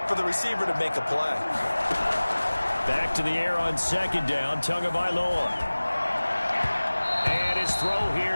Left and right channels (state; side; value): inverted; both; correlation -1.00